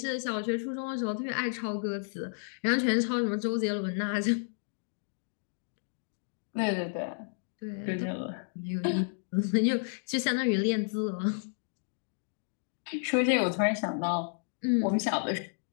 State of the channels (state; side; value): silent; right; digital silence